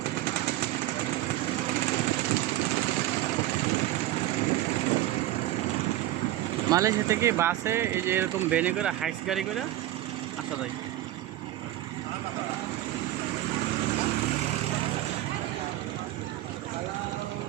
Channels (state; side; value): quieter; left; 14.8 dB